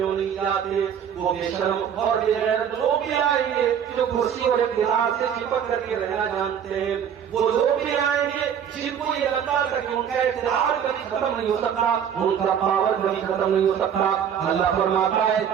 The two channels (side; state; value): left; quieter; 8.4 dB